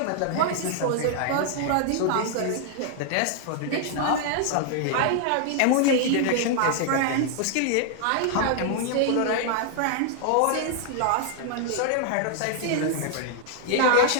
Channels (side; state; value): both; different; correlation 0.00